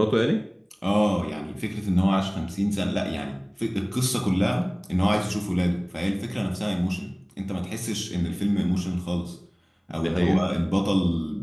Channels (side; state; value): both; identical; correlation 1.00